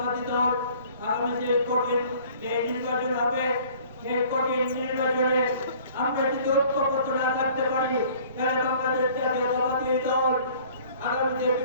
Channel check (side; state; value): both; inverted; correlation -0.53